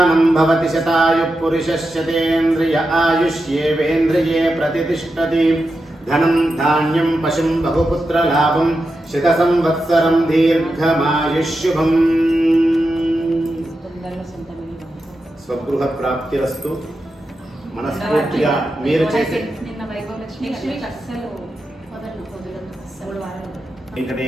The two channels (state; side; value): normal; both; correlation 0.89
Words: भवति शतायुः पुरुषस्यतेन्द्रिय आयुष्येवेन्द्रिये प्रतिष्ठति। धनं धान्यं पशुं बहुपुत्रलाभं शतसंवत्सरं दीर्घमायुष्युभम्। స్వగృహ ప్రాప్తిరస్తు। మనస్ఫూర్తిగా మీరు చేసే